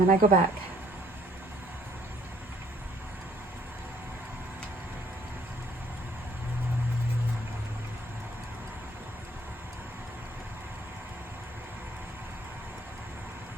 then I go back.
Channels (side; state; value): both; normal; correlation 0.62